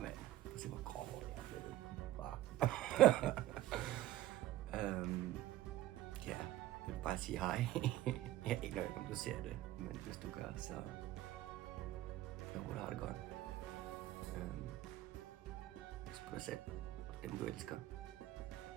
Prøv at se, hvor grov jeg er blevet. Ja, jeg vil bare sige hej. Jeg aner ikke, om du ser det, men hvis du gør, så jeg håber, du har det godt. Pas på dig selv og dem, du elsker.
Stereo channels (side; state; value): left; quieter; 14.7 dB